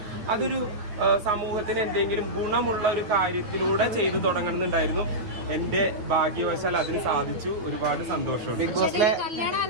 അതൊരു സമൂഹത്തിന് എന്തെങ്കിലും ഗുണമുള്ള ഒരു കാര്യത്തിലൂടെ ചെയ്തു തുടങ്ങണമെന്നുണ്ടായിരുന്നു. എന്റെ ഭാഗ്യവശാൽ അതിന് സാധിച്ചു. ഒരുപാട് സന്തോഷമുണ്ട്.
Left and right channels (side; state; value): left; late; 9.5 ms